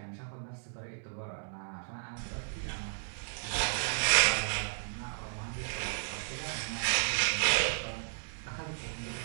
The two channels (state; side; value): silent; left; digital silence